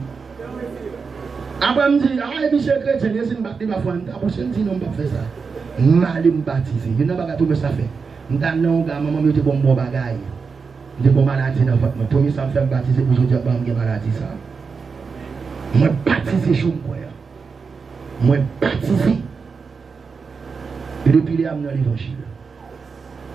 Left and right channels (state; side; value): quieter; left; 5.2 dB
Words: Après, je me dis, ah, monsieur chrétien, je suis baptisé, je me dis, non, je ne fais ça. Je vais me baptiser. Je n'ai pas tout ça fait. Je dis, non, maman, je suis bon bagaille. Je suis bon maladie dans votre. Premier, ça me fait baptiser pour je dis, je suis maladie. Je suis baptisé, je suis baptisé. Et depuis là, je suis dans l'évangile.